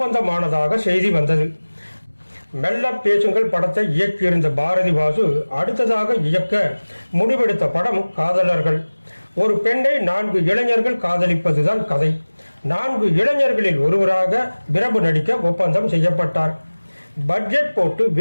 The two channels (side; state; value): both; inverted; correlation -1.00